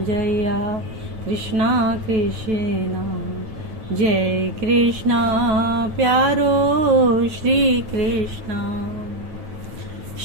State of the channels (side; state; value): left; late; 9.1 ms